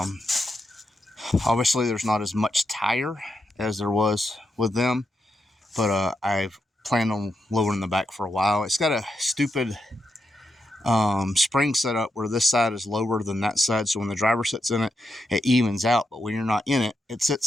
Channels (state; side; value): normal; both; correlation 0.84